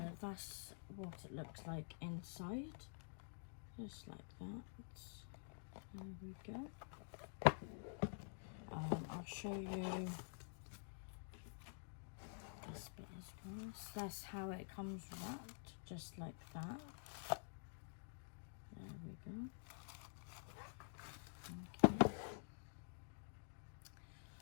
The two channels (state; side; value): silent; right; digital silence